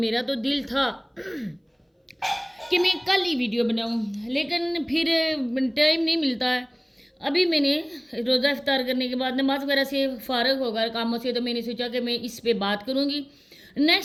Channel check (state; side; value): identical; both; correlation 1.00